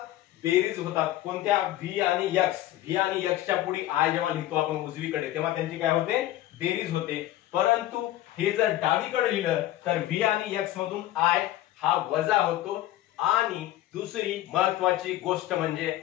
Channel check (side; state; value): right; quieter; 14.6 dB